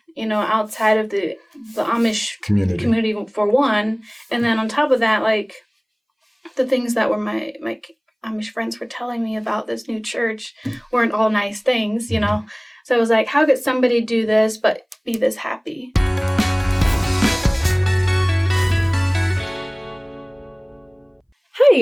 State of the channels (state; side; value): identical; both; correlation 1.00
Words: outside of the Amish community for one, and then on top of that, like, the things that were my Amish friends were telling me about this new church weren't all nice things, So I was like, how could somebody do this but be this happy? Hi